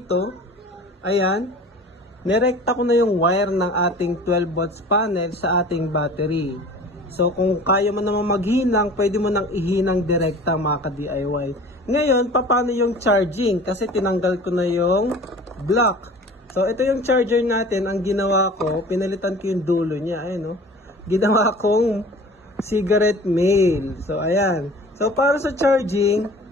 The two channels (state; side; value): normal; both; correlation 0.43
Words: Ayan. Nirekta ko na yung wire ng ating 12 volts panel sa ating battery. So kung kaya mo naman maghinang, pwede mo nang ihinang direkta mga ka-DIY. Ngayon, paano yung charging? Kasi tinanggal ko na yung block. So ito yung charger natin. Ang ginawa ko, pinalitan ko yung dulo niya. Ayan, no? Ginawa kong cigarette mail. So, ayan. So, para sa charging,